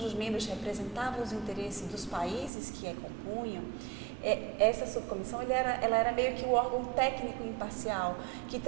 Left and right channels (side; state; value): left; drops out; at 2.5 s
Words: membros representavam os interesses dos países que a compunham. Essa subcomissão ela era meio que o órgão técnico imparcial, que